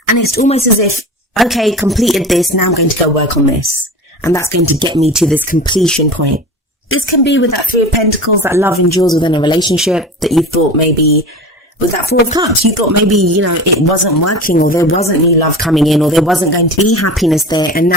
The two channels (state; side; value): normal; both; correlation 0.33